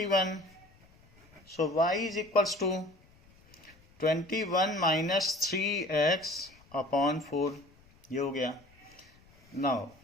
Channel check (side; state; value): left; noise; rumble, 28 dB below the sound